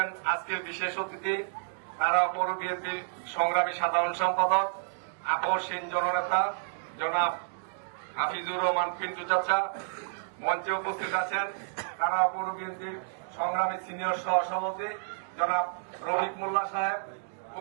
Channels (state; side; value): silent; left; digital silence